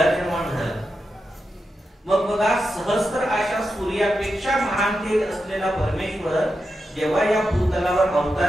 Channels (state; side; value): normal; both; correlation 0.88